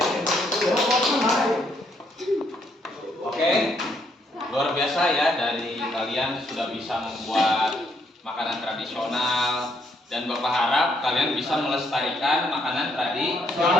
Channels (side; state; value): both; normal; correlation 0.72